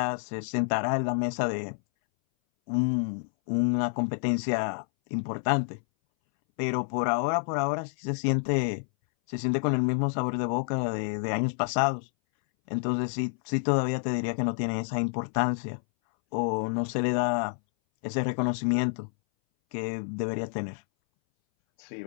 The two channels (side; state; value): right; silent; 59 dB below the other